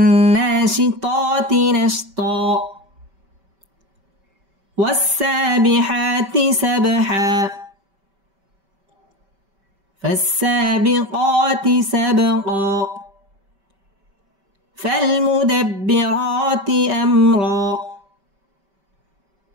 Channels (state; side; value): late; left; 5.2 ms